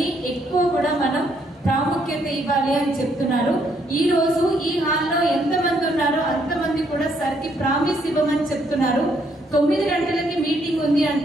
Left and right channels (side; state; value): both; normal; correlation 0.71